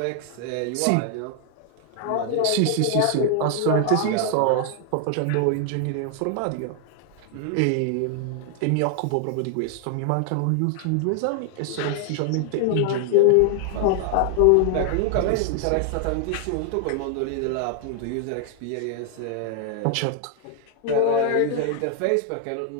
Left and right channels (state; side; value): different; both; correlation 0.00